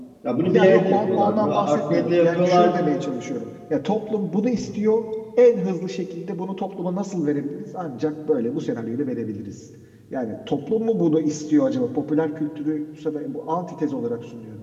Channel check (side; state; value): both; identical; correlation 1.00